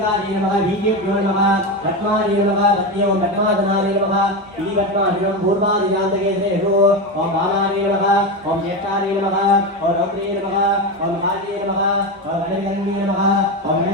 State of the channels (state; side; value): normal; both; correlation 0.16